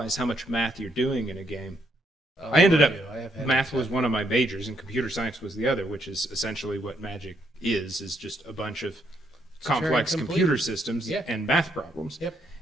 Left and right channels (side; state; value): both; normal; correlation 0.74